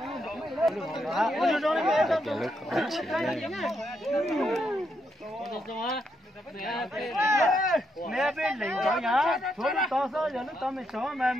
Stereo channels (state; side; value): normal; both; correlation 0.79